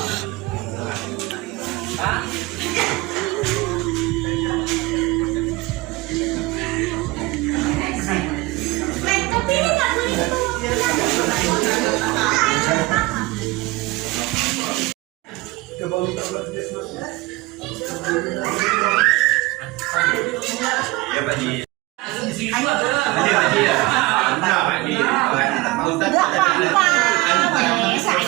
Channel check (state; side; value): quieter; left; 21.3 dB